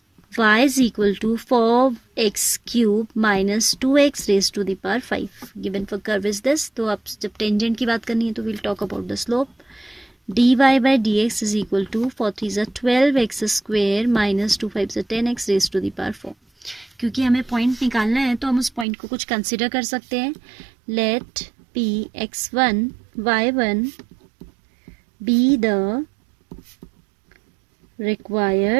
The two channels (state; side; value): drops out; left; at 18.9 s